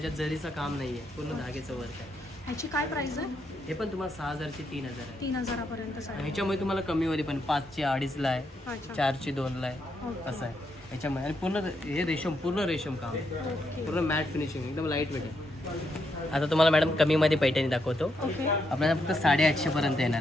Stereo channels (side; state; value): both; normal; correlation 0.79